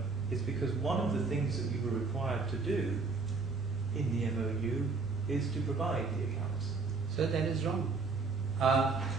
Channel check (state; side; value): quieter; left; 4.3 dB